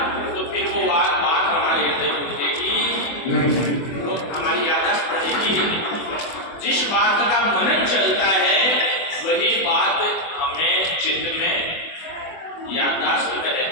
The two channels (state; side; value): late; right; 24 ms